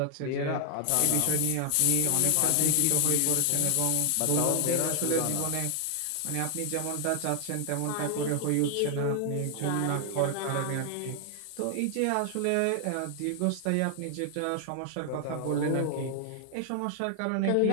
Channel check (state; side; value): different; both; correlation 0.00